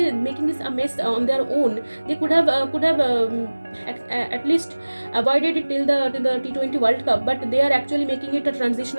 a mess on their own. They could have at least avoided it till the T20 World Cup, but they are actually making it a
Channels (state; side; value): inverted; both; correlation -1.00